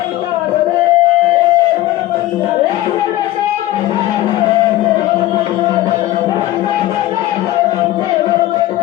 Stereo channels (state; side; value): quieter; right; 15.6 dB